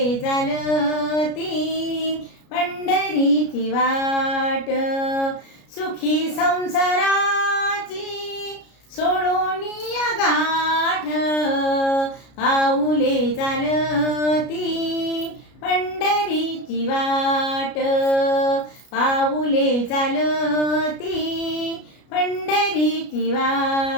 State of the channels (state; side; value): late; right; 33 ms